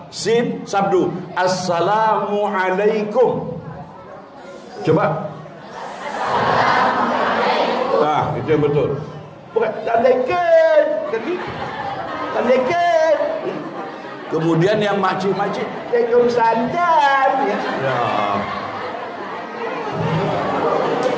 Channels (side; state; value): both; identical; correlation 1.00